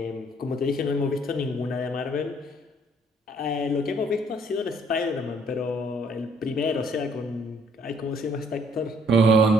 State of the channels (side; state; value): both; normal; correlation 0.63